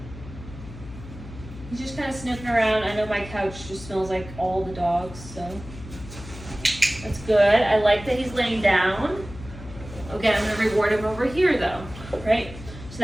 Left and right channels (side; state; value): left; noise; hum, 14 dB below the sound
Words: He's just kind of sniffing around. I know my couch just smells like all the dogs, so that's good. I like that he's laying down. Again, I'm gonna reward him over here though, right? So